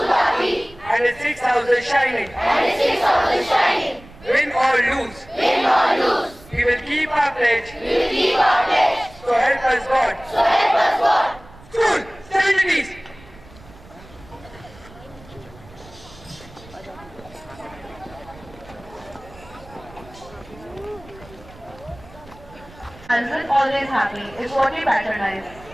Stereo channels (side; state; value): right; noise; rumble, 22 dB below the sound